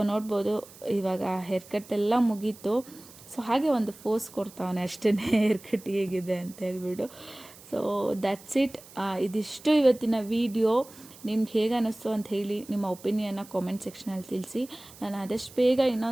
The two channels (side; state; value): right; noise; hiss, 21 dB below the sound